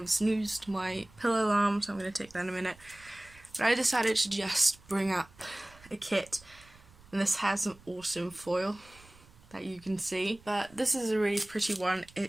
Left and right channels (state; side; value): noise; right; rumble, 25 dB below the sound